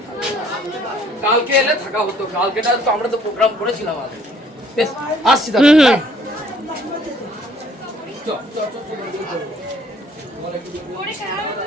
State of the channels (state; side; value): normal; both; correlation 0.60